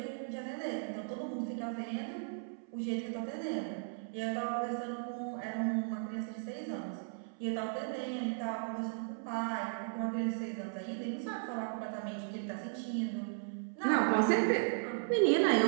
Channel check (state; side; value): silent; left; 54 dB below the other